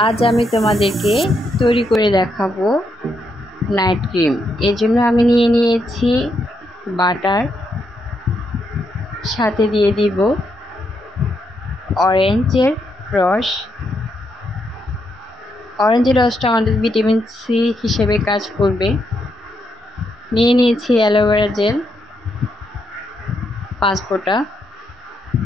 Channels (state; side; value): normal; both; correlation 0.79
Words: আজ আমি তোমাদেরকে তৈরি করে দেখাবো নাইট ক্রিম। এর জন্য আমি নিয়ে নিয়েছি বাটার, সাথে দিয়ে দিব অরেঞ্জের রস। অরেঞ্জের রসটা আমাদের ভিটামিন সি হিসেবে কাজ করবে। নিয়ে নিয়েছি অ্যালোভেরা জেল 5 ফোঁটা।